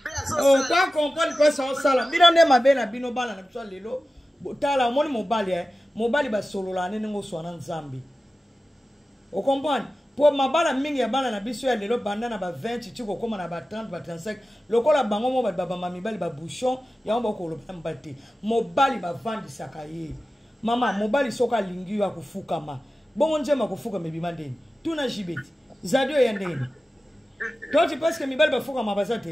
oka comprendre mpesa osala bino nde mabe na bino bana na biso lelo tala omoni mobali basolola nene ngo oswa na nzambe okomprendre po mabala mingi ya bana na biso ya lelo banda na ba 20 ti kokoma na ba 30 ba 35 lokola bango mo ba mibali ba bouchon yango bakoloba mobali te mobali bavandisaka ye mama mobali soka alingi yo akufukama bongo njema kufukama ebima ndeni tuna jibeti zadio ya ndeni toti parce que mibali bafukama baza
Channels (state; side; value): normal; both; correlation 0.94